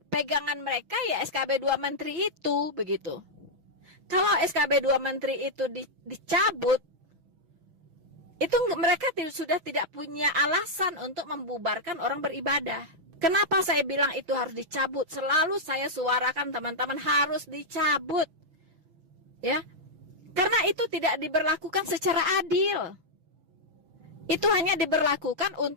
Pegangan mereka ya SKB 2 Menteri itu, begitu. Kalau SKB 2 Menteri itu dicabut, itu mereka sudah tidak punya alasan untuk membubarkan orang beribadah. Kenapa saya bilang itu harus dicabut? Selalu saya suarakan teman-teman harus dicabut. Ya. Karena itu tidak diberlakukan secara adil. Itu hanya diberlakukan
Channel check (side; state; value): left; late; 6.1 ms